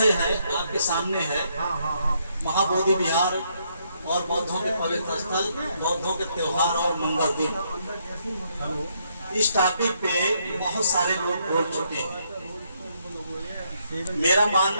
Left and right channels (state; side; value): inverted; both; correlation -0.74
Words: है आपके सामने है महाबोधि विहार और बौद्धों के पवित्र स्थल, बौद्धों के त्योहार और मंगल दिन। इस टॉपिक पे बहुत सारे लोग बोल चुके हैं। मेरा